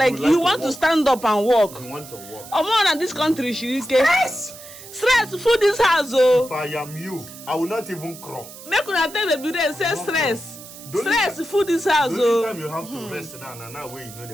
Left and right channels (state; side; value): noise; right; hiss, 16 dB below the sound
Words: you want to stand up and walk. You want to walk. More than this country, Stress. Stress. Food this house, oh. If I am you, I will not even crawl. Make una tell Baby Rain say stress. Stress. Food this house, oh. Time you have to rest now. Now where you know the.